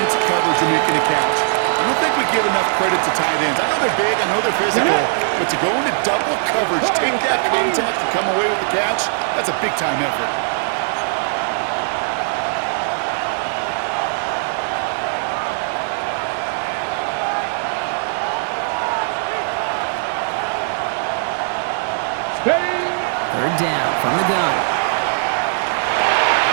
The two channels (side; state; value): left; silent; 66 dB below the other